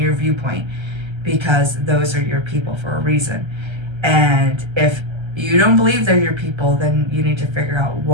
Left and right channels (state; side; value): late; left; 1.3 ms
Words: viewpoint, because those are your people for a reason. And if you don't believe they're your people, then you need to figure out